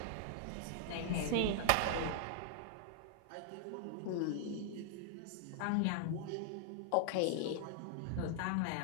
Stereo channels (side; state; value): both; different; correlation -0.01